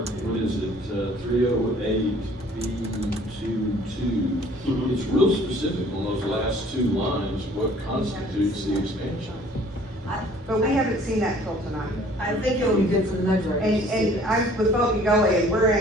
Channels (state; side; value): normal; both; correlation 0.54